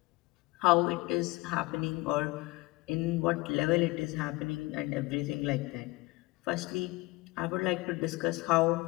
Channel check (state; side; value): quieter; right; 22.0 dB